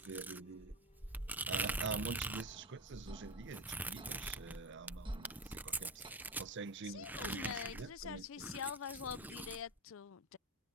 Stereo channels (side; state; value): both; normal; correlation 0.21